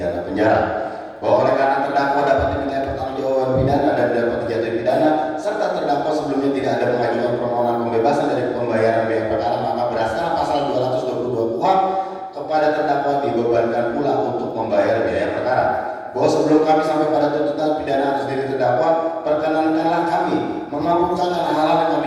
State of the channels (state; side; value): identical; both; correlation 1.00